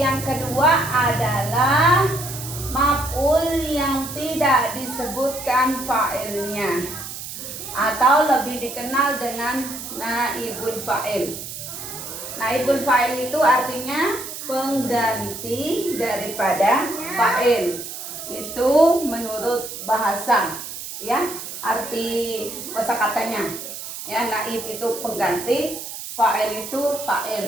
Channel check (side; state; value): right; noise; hiss, 9 dB below the sound